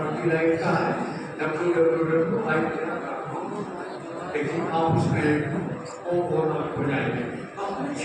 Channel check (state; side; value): identical; both; correlation 1.00